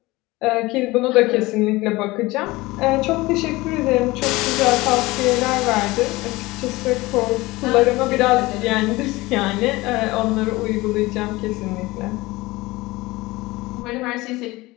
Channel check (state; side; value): quieter; right; 20.7 dB